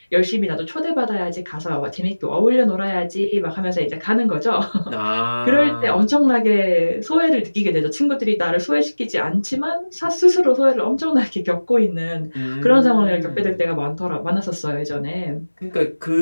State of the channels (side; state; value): both; inverted; correlation -1.00